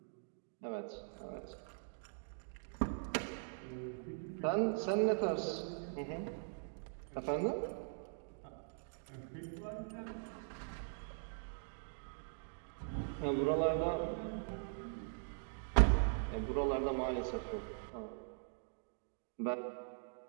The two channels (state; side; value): silent; left; digital silence